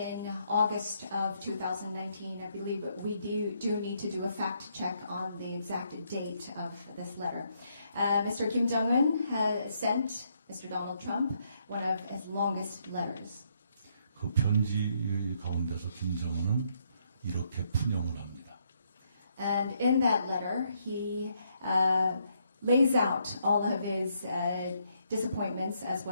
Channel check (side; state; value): both; inverted; correlation -0.74